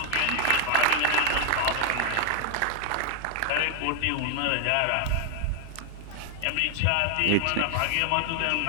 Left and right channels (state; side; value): different; both; correlation 0.00